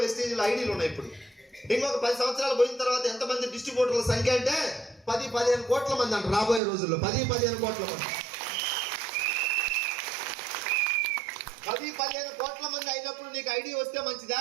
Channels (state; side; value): drops out; left; at 6.6 s